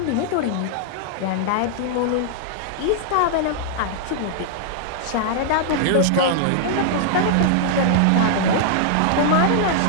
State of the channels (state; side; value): different; both; correlation -0.01